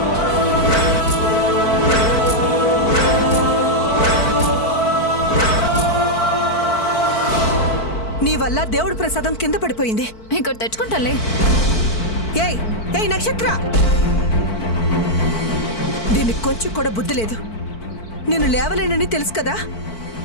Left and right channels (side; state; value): right; late; 4.5 ms